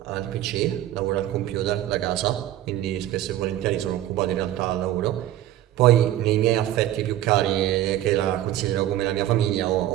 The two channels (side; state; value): left; quieter; 13.3 dB